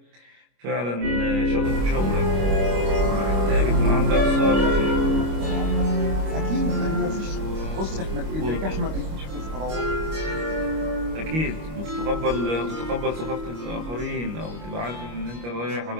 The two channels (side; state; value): left; late; 25 ms